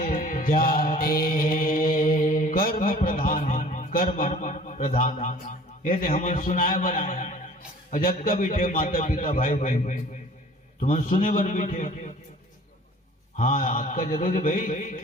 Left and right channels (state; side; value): normal; both; correlation 0.49